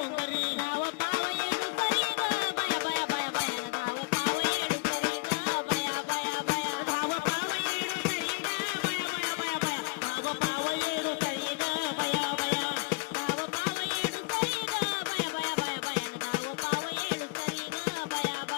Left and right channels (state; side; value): quieter; right; 28.9 dB